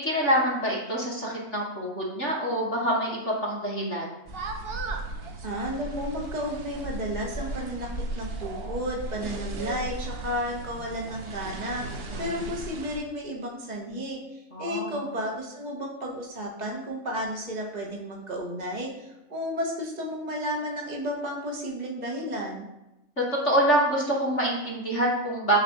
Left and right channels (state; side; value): late; right; 3.4 ms